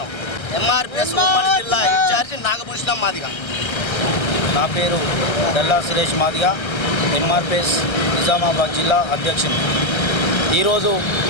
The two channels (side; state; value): right; late; 1.3 ms